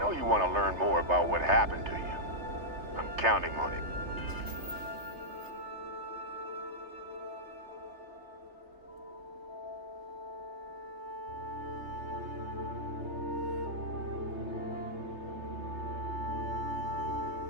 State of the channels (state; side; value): late; left; 3.3 ms